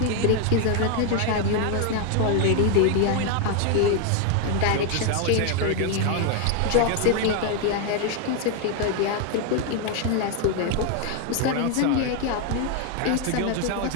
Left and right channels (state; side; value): different; both; correlation 0.01